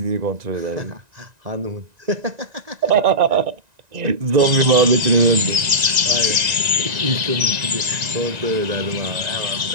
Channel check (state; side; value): late; left; 1.9 ms